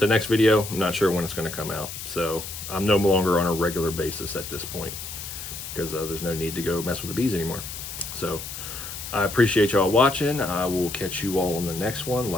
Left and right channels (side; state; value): left; noise; hiss, 9 dB below the sound